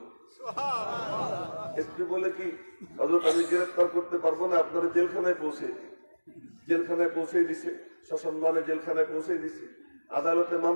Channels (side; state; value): both; inverted; correlation -1.00